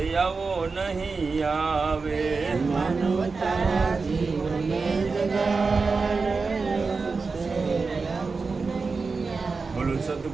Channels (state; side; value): quieter; left; 4.4 dB